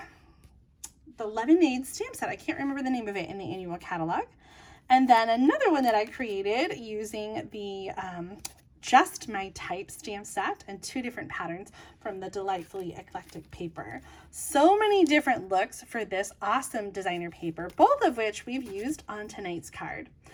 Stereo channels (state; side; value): identical; both; correlation 1.00